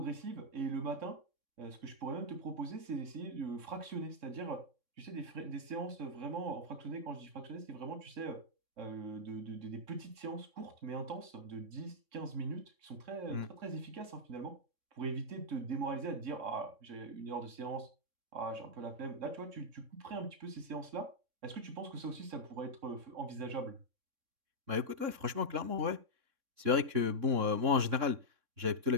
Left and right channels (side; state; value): left; late; 3.6 ms